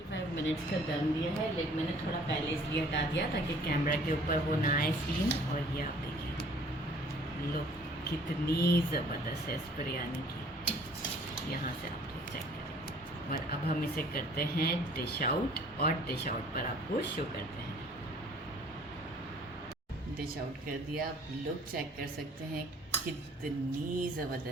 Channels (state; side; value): normal; both; correlation 0.54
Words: 25 मिनट्स का दम दिया है, लेकिन मैंने थोड़ा पहले इसलिए हटा दिया ताकि कैमरा के ऊपर वो ना आए सीन। और ये आप देखिए लो कितनी ज़बरदस्त है इस बिरयानी की, यहाँ से आप लोग चेक करें। और अब हम इसे करते हैं डिश आउट और डिश आउट पर आपको शो करते हैं। डिश आउट कर दिया, आप लोग चेक कर सकते हैं कितनी